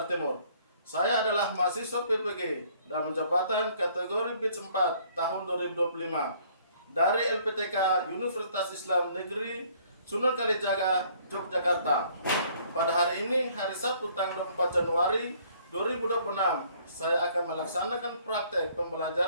Timur. Saya adalah mahasiswa PPG dan jabatan kategori BITS 4 tahun 2025 dari LPTK Universitas Islam Negeri Sunan Kalijaga, Yogyakarta. Pada hari ini, hari Sabtu tanggal 24 Januari 2026, saya akan melaksanakan praktek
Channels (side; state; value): both; inverted; correlation -0.61